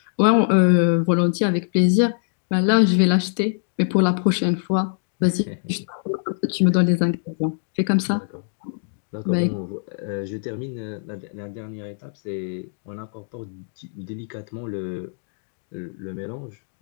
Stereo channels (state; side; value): silent; right; digital silence